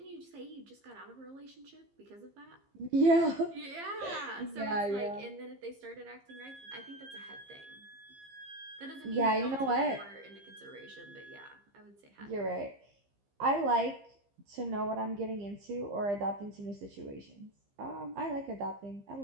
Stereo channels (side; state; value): left; late; 15 ms